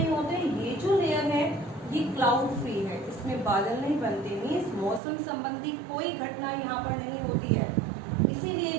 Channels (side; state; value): left; drops out; at 5.0 s